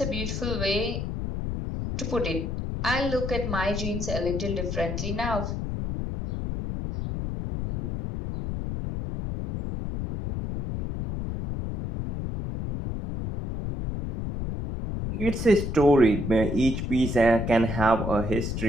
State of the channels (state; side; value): noise; left; rumble, 4 dB below the sound